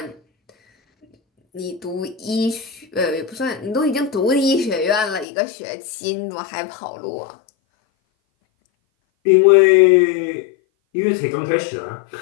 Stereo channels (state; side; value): drops out; right; at 5.2 s